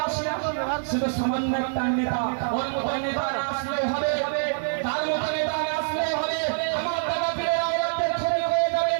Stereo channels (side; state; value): left; silent; 61 dB below the other